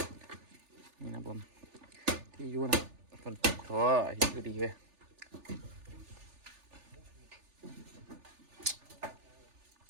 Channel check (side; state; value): left; late; 3.4 ms